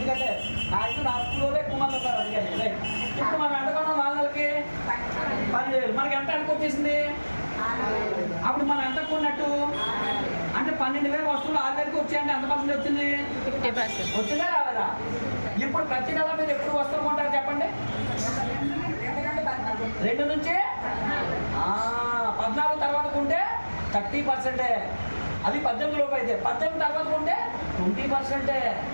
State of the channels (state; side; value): inverted; both; correlation -1.00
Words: నా స్కూల్లో ఎక్కువ మంది ఉన్నారు. అందుకని ఇప్పుడు మనం ఎంత కొన్నాం? 4 నెలలకి 12,000. మనకి ఎంత అనుకు వచ్చేసింది? అప్పుడు మనం ఎంత కొన్నట్టు? అంటే 12,000 వస్తువులు 6,000కి వచ్చాయంటే ఎంత పర్సెంట్ వచ్చింది? 50%. వచ్చిందా రాలేదా? ఇప్పుడు ప్రతి నెల మీరు ఎప్పుడు వస్తువులు కొంటారు చెప్పండి? 2 నుంచి 14 తర్వాత కొంటే 30%. అది 18 లోపు అయితే. 18 తర్వాత కొంటే 20%.